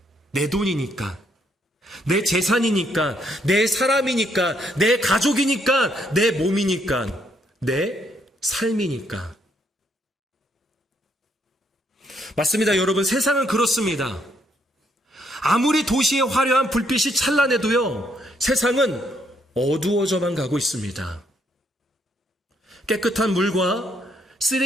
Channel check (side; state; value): both; normal; correlation 0.72